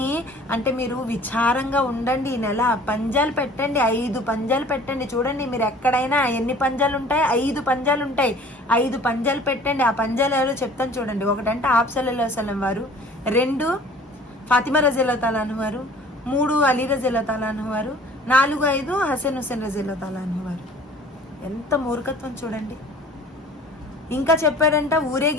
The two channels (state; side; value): normal; both; correlation 0.48